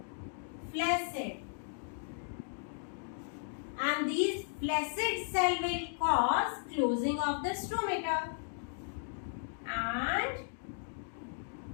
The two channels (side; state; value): right; silent; digital silence